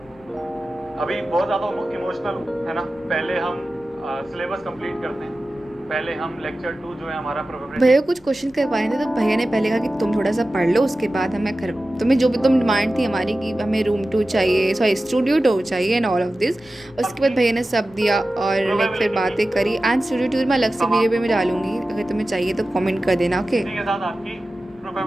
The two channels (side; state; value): left; noise; rumble, 27 dB below the sound